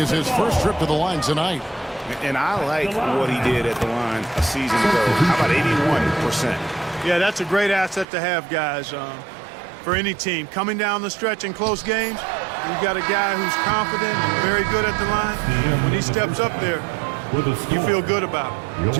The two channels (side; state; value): left; drops out; at 8.1 s